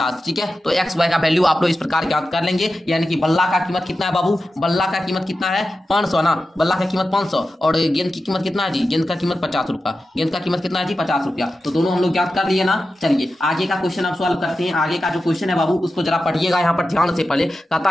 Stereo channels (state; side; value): normal; both; correlation 0.92